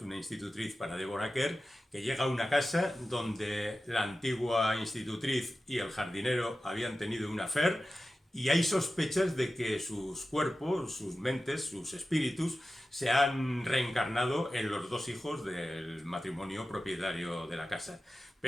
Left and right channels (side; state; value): both; normal; correlation 0.94